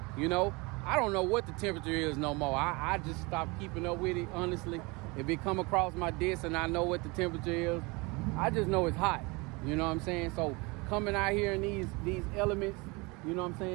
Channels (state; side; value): quieter; left; 26.4 dB